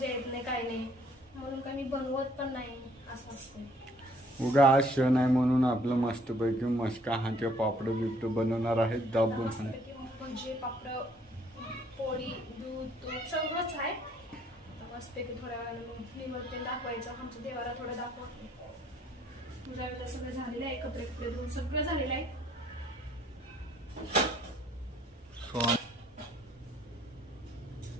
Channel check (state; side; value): normal; both; correlation 0.62